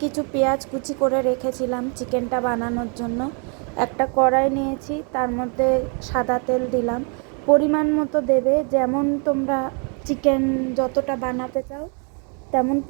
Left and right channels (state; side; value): quieter; left; 38.1 dB